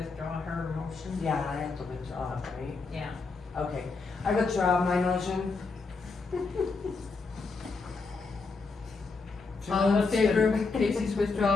her motion? Yeah, I have to withdraw it, right? Yeah. Okay, I withdraw my motion. All in favor of Casey's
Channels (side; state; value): right; quieter; 4.2 dB